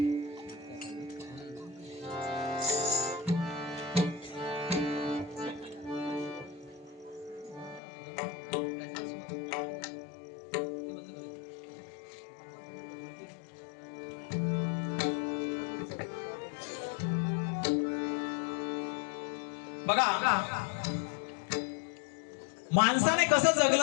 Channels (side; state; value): right; drops out; at 7.8 s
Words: बघा माणसाने कसं